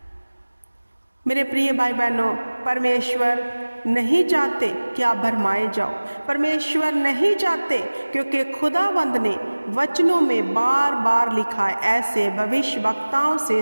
मेरे प्रिय भाई बहनों, परमेश्वर नहीं चाहते कि आप भरमाए जाओ। परमेश्वर नहीं चाहते, क्योंकि खुदावंद ने वचनों में बार बार लिखा है, ऐसे भविष्यवक्ताओं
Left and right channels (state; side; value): inverted; both; correlation -1.00